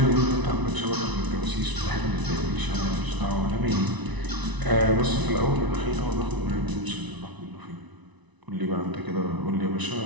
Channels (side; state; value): left; late; 1.0 ms